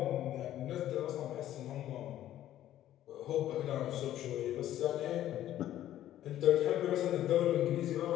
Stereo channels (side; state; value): right; quieter; 12.6 dB